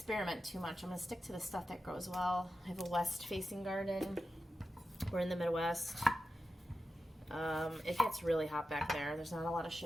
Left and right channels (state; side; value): normal; both; correlation 0.91